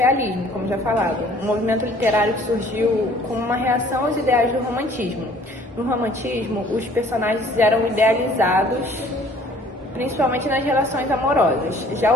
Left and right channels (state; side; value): normal; both; correlation 0.55